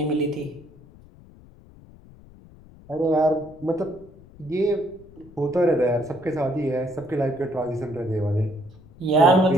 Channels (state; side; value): noise; left; rumble, 23 dB below the sound